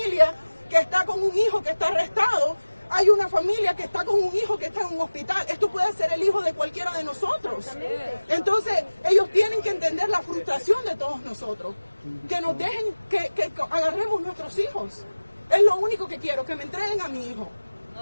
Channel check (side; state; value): both; inverted; correlation -1.00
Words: que está con un hijo que está arrestado, hay una familia que está con un hijo que está en un hospital. Esto puede ser el hijo de cualquiera de nosotros. Entonces, ellos tienen que entender la frustración de todos nosotros. Que nos dejen, que agarremos nuestros hijos. Es lo único que quiero, que me entreguen a mi hijo. No